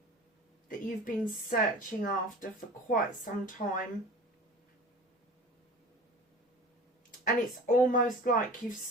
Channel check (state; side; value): normal; both; correlation 0.39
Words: that you've been searching after for quite some time. And it's almost like you've